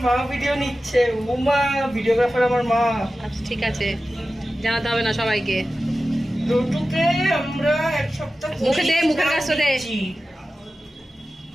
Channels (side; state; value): both; normal; correlation 0.94